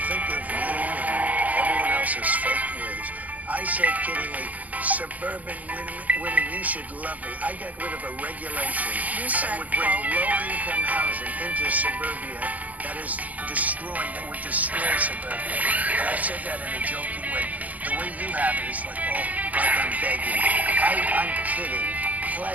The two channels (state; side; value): late; left; 0.076 ms